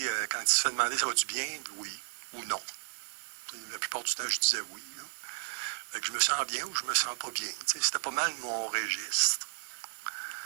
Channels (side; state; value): left; silent; digital silence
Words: quand il se fait demander ça va-tu bien, oui ou non. La plupart du temps, je disais oui. Fait que je me sens bien ou je me sens pas bien. Tu sais, c'était pas mal mon registre.